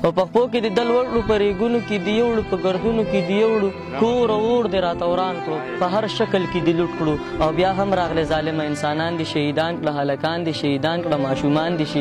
او په خپو کې د دل ولکړو په ریګونو کې د یوړو په ګردونو کې د یوړو کور او اور دې راته وران کړو په هر شکل کې دې لوټ کړو او بیا هم راغلی ظالمه انسانان دې شهیدان کړه هلکان دې شهیدان کړه ماشومان دې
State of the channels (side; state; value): both; identical; correlation 1.00